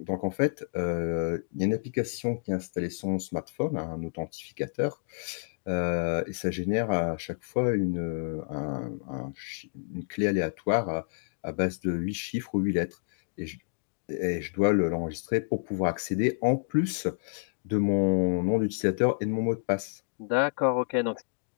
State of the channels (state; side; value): silent; right; digital silence